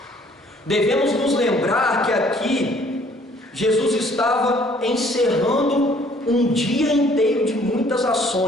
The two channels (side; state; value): both; normal; correlation 0.59